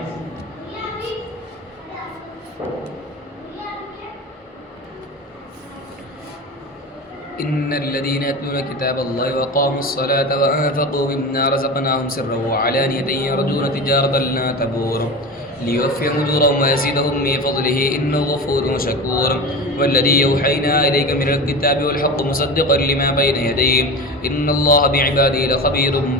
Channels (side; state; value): both; normal; correlation 0.29